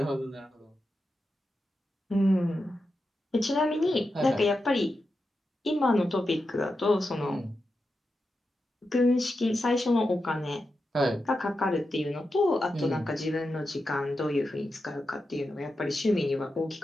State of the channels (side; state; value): both; normal; correlation 0.89